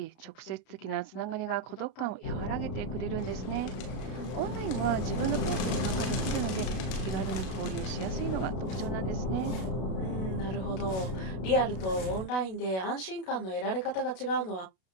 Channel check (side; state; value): right; late; 33 ms